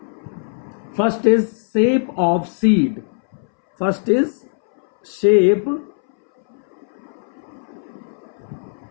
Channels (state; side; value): silent; right; 64 dB below the other